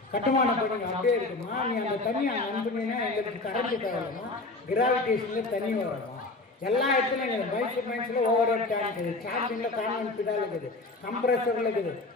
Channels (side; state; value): right; quieter; 3.2 dB